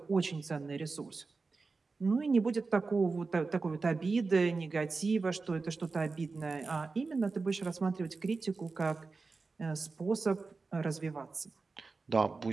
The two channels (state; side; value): quieter; left; 4.1 dB